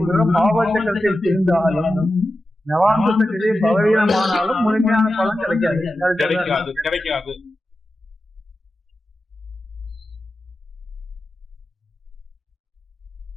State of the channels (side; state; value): both; normal; correlation 0.92